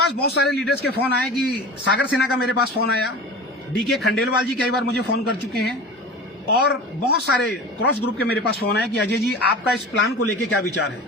बहुत सारे लीडर्स के फोन आए, कि सागर सिन्हा का मेरे पास फोन आया, डी.के. खंडेलवाल जी कई बार मुझे फोन कर चुके हैं, और बहुत सारे क्रॉस ग्रुप के मेरे पास फोन आए कि अजय जी आपका इस प्लान को लेके क्या विचार है।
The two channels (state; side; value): normal; both; correlation 0.35